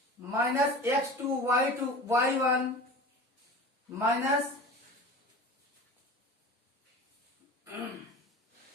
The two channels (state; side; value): normal; both; correlation 0.35